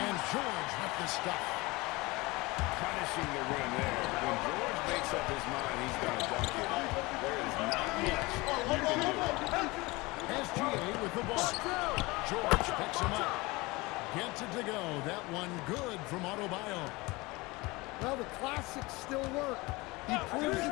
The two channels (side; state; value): right; quieter; 23.1 dB